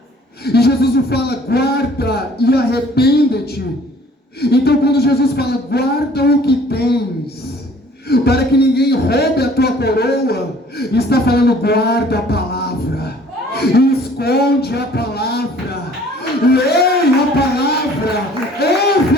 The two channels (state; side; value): normal; both; correlation 0.54